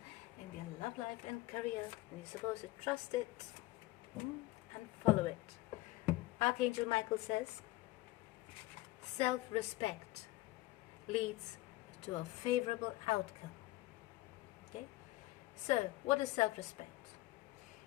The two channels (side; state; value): right; quieter; 18.6 dB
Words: in their love life and career, and you're supposed to trust it and follow it. Archangel Michael says, self-respect leads to a favorable outcome. Okay, so what is self-respect?